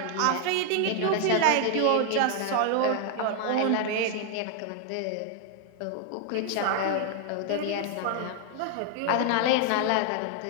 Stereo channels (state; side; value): different; both; correlation 0.00